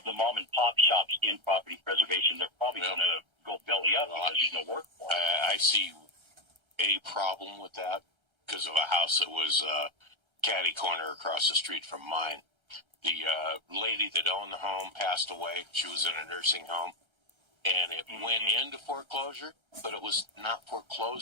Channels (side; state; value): left; late; 1.3 ms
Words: the mom and pop shops in property preservation, they're probably going to go belly up because there's no work for them. I see a problem with that because of a house that was catty corner across the street from mine. The lady that owned the home passed away. She was in a nursing home, and it went into foreclosure, but it was not